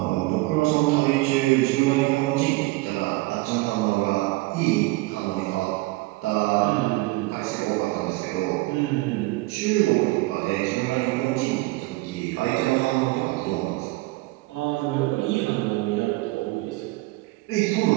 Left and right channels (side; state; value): left; quieter; 21.5 dB